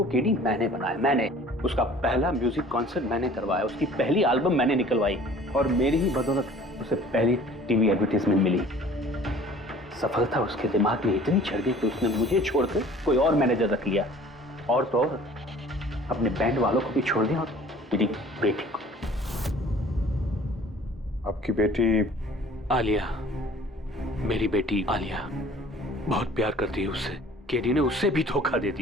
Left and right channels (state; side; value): normal; both; correlation 0.49